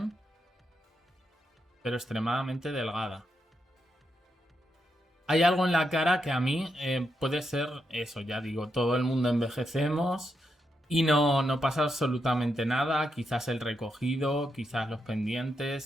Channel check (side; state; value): both; normal; correlation 0.83